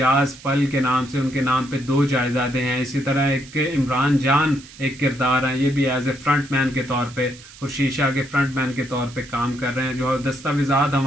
पल के नाम से उनके नाम पे 2 जायदादें हैं। इसी तरह एक इमरान जान एक किरदार है, ये भी एज ए फ्रंट मैन के तौर पे खुर्शीद शाह के फ्रंट मैन के तौर पे काम कर रहे हैं। जो दस्तावेजात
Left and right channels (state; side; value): noise; right; hiss, 20 dB below the sound